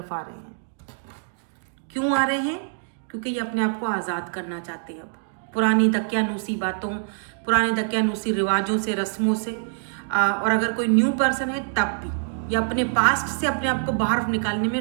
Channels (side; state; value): left; silent; digital silence